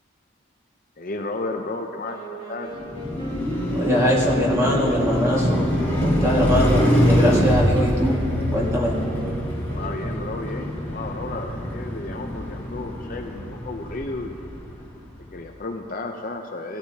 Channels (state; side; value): normal; both; correlation 0.68